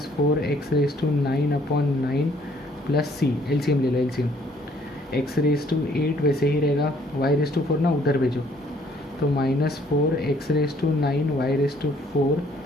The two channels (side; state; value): both; normal; correlation 0.62